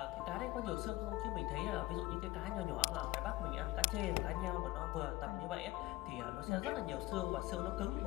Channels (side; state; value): right; quieter; 18.7 dB